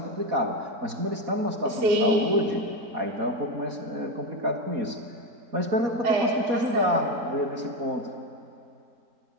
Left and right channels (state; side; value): late; left; 4.2 ms